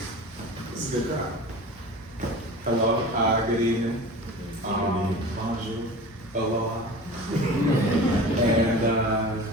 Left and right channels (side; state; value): both; normal; correlation 0.37